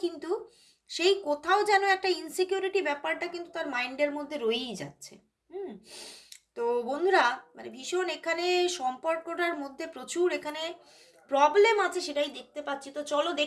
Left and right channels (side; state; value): both; identical; correlation 1.00